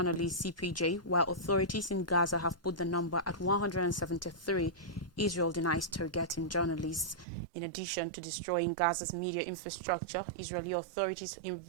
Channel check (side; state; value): left; drops out; at 7.2 s